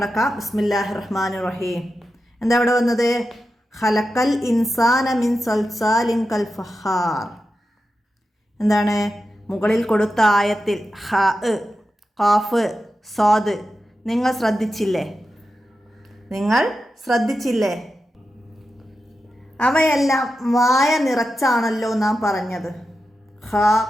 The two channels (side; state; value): both; normal; correlation 0.90